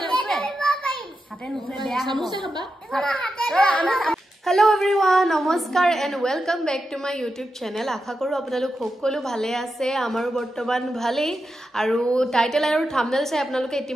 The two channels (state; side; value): normal; both; correlation 0.88